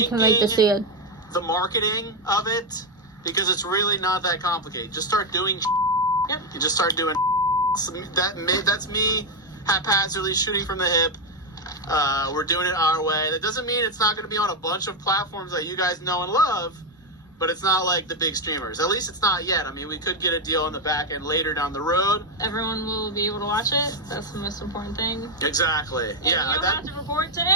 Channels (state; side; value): normal; both; correlation 0.06